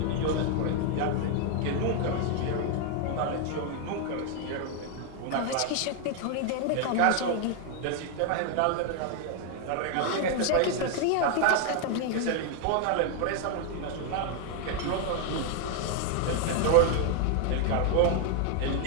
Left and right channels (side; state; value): both; different; correlation 0.00